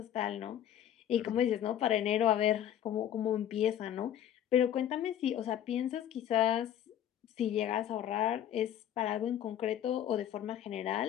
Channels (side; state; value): right; quieter; 10.7 dB